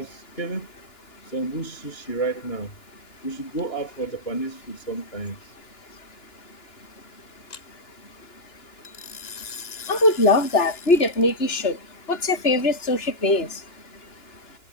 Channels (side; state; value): right; late; 2.9 ms